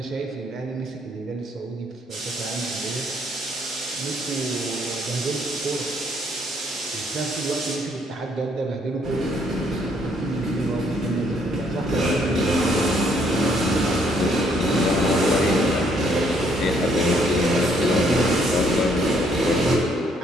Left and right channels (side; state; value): both; normal; correlation 0.68